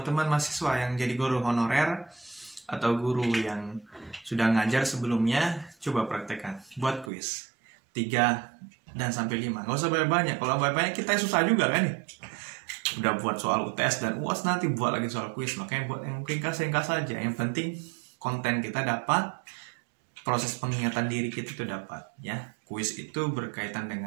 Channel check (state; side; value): drops out; left; at 7.1 s